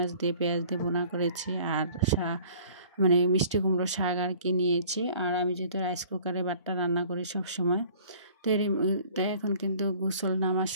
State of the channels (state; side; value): inverted; both; correlation -0.51